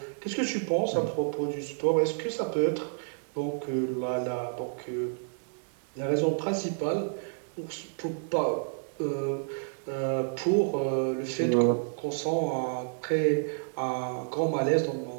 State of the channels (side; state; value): left; silent; digital silence